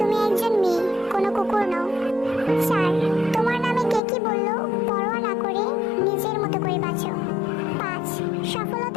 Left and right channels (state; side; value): drops out; right; at 4.0 s